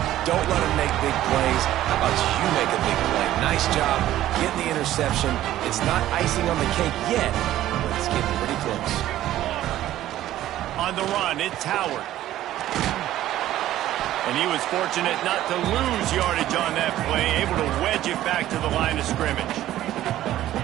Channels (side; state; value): left; quieter; 13.6 dB